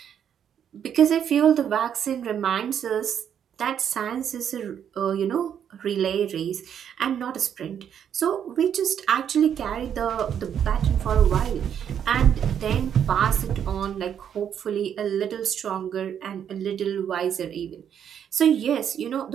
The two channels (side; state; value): left; quieter; 8.8 dB